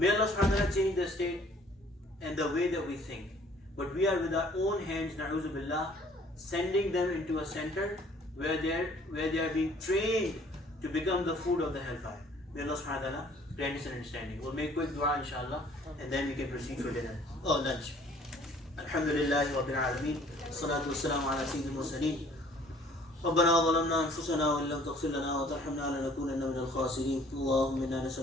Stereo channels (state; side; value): normal; both; correlation 0.56